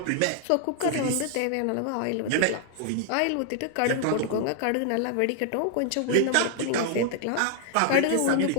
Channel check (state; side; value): different; both; correlation 0.00